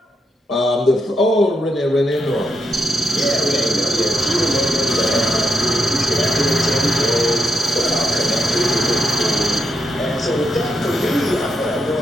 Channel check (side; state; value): both; normal; correlation 0.82